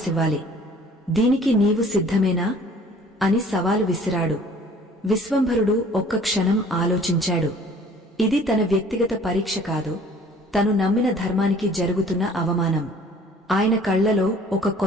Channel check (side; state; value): both; normal; correlation 0.52